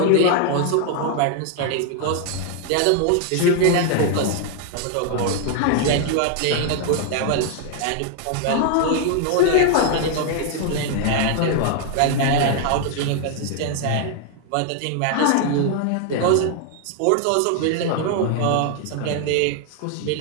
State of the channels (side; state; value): both; different; correlation 0.00